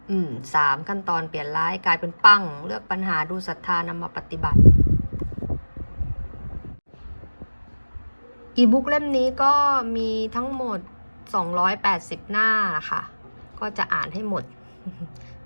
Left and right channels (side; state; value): both; inverted; correlation -1.00